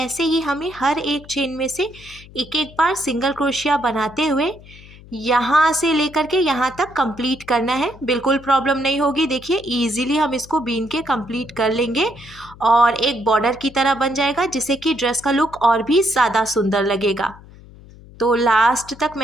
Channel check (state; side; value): noise; left; hum, 21 dB below the sound